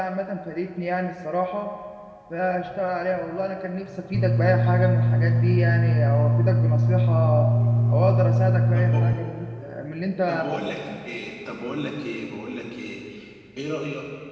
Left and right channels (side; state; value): both; identical; correlation 1.00